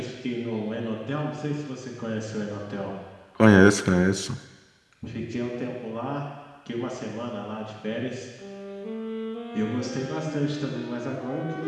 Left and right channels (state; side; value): identical; both; correlation 1.00